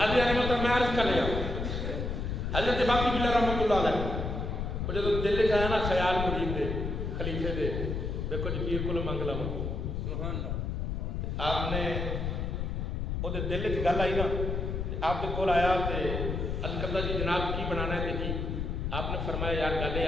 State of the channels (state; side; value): noise; left; rumble, 2 dB below the sound